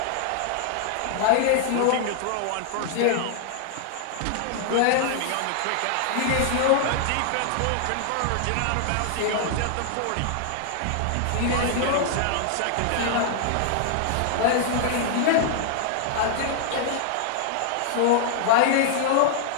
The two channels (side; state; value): both; different; correlation -0.01